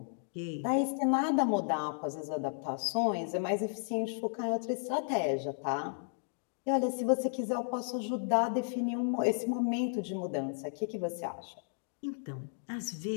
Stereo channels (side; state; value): right; silent; digital silence